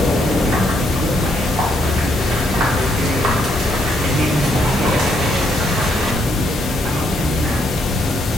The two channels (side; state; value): both; normal; correlation 0.74